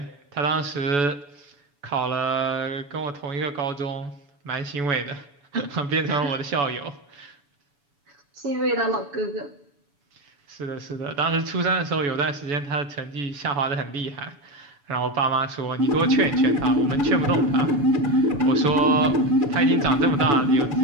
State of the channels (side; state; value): left; late; 7.0 ms